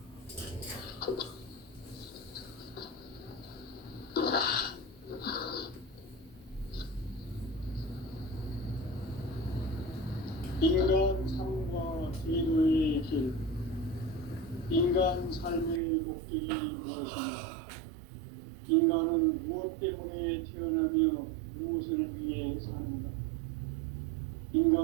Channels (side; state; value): left; drops out; at 15.8 s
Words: 인간 삶과 제도의 길. 인간 삶의 목적이 무엇인가? 인간은 무엇 때문에 태어나며 무엇을 위해 사는가?